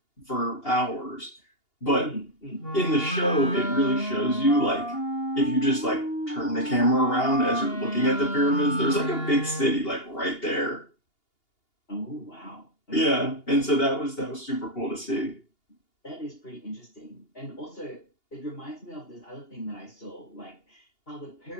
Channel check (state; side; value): late; right; 2.8 ms